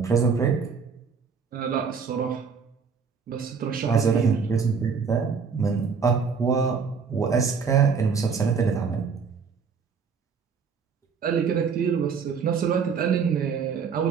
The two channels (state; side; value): quieter; left; 5.8 dB